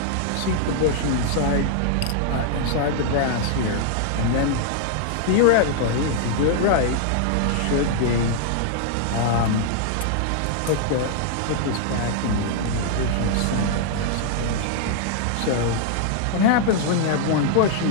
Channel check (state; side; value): different; both; correlation -0.01